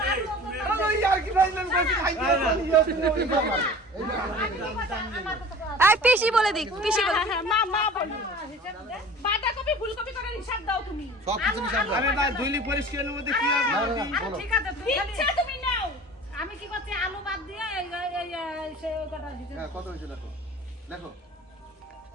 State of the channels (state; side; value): normal; both; correlation 0.42